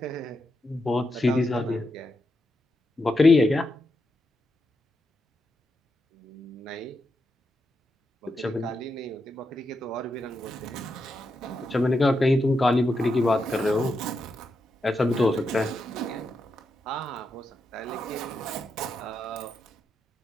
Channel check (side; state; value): both; normal; correlation 0.85